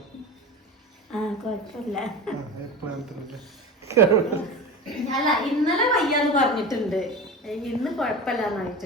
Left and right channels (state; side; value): normal; both; correlation 0.30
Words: അല്ല ഇന്നലെ വയ്യാന്ന് പറഞ്ഞിട്ടുണ്ട്, ഇന്ന്